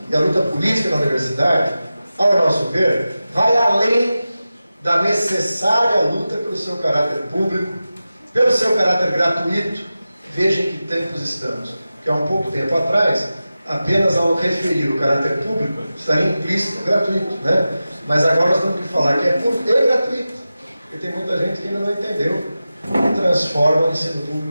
e a luta política na universidade, ao nosso ver, vai além da necessária luta pelo seu caráter público, pelo seu caráter gratuito. Vejam que tempos estamos, que há um pouco tempo atrás, apenas ao referir o caráter público, estaria implícito gratuito, né? Mas agora nós temos que falar que é público e gratuito, porque tem muita gente que ainda não entendeu e transforma o ensino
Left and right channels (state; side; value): inverted; both; correlation -0.94